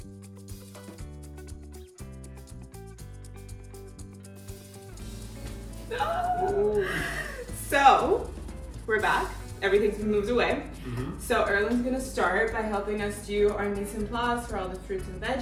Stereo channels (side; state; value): both; identical; correlation 1.00